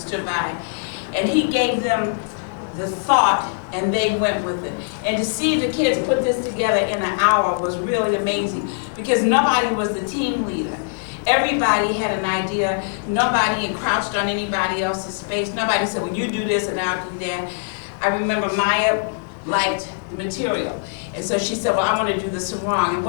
by. And he gave them the thought, and they went with it. And to see the kids put this together in an hour was really amazing, because nobody was the team leader. Everybody had an idea. Nobody encroached on anybody else's space. Nobody said, well, you do this and I'll do that. I remember Maye liked the material. And so she said, well, I want to do the sarong. And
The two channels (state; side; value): silent; right; digital silence